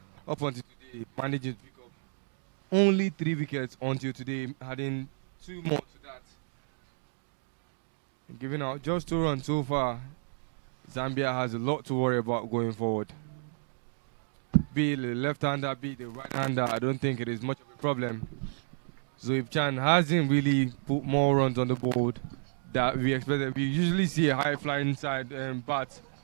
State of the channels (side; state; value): left; silent; digital silence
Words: up until today, managing to pick up only 3 wickets until today, having 2 more to that. And giving out just 2 runs so far, Zambia has a lot to worry about going forward. Be it the left-hander, be it the right-hander, I don't think it is much of a problem. Zoib Chan hasn't really put more runs on the board that we expected. We usually see a high-flying side bat